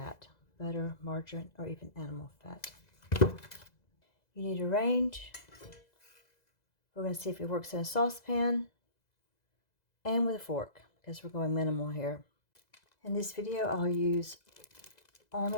butter, margarine, or even animal fat. You need a range. We're going to see if it works in a saucepan and with a fork, because we're going minimal here. In this video, I'll use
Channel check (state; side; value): late; right; 2.0 ms